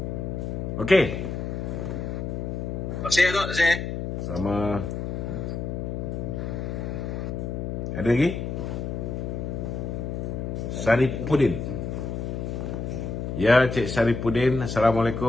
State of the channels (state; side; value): noise; left; hum, 4 dB below the sound